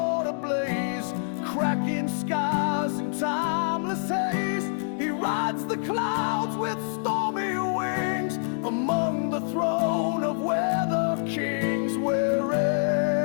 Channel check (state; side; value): silent; right; 60 dB below the other